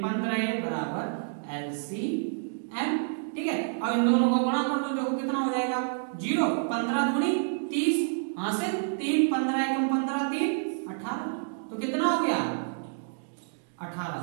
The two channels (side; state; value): left; silent; digital silence